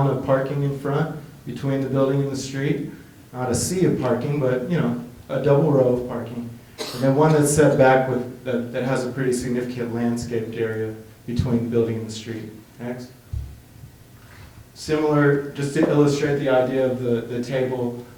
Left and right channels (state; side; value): identical; both; correlation 1.00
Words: of parking in front between the building and the street. Not a sea of parking, but a double row of parking. And then one that's set back with that has a pretty significant landscaped area between the building and the street. Next. Similar, just to illustrate the idea of the table